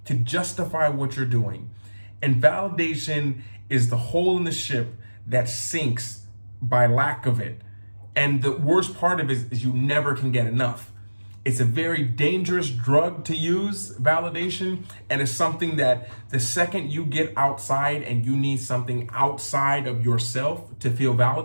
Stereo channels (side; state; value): both; inverted; correlation -1.00